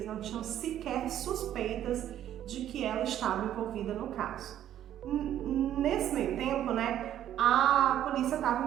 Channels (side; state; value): left; quieter; 11.4 dB